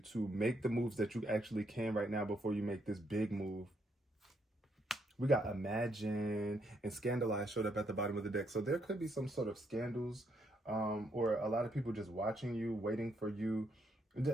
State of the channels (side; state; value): both; normal; correlation 0.75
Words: make the moves that you actually can right now before you make this big move. We got Imagine and Scandalize showed up at the bottom of the deck. So there could be some sort of scandals, or a lot of people just watching you, waiting for you,